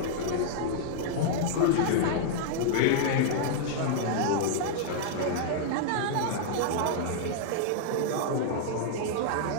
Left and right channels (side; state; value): both; different; correlation -0.01